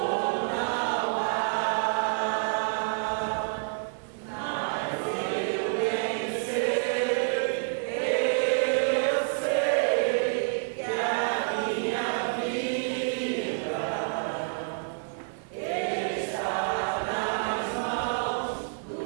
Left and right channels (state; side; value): silent; left; 56 dB below the other